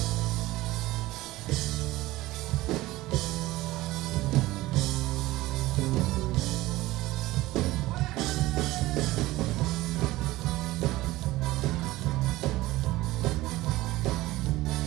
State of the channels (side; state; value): left; quieter; 18.0 dB